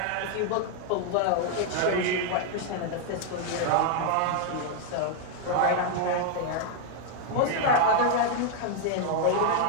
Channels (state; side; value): different; both; correlation 0.00